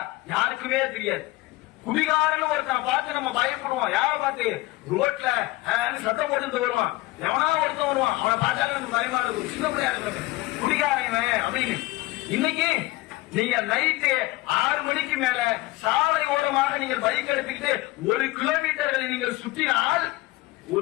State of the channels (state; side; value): quieter; right; 19.9 dB